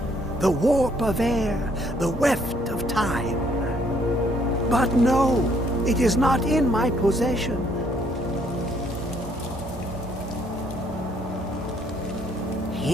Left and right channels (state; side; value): normal; both; correlation 0.66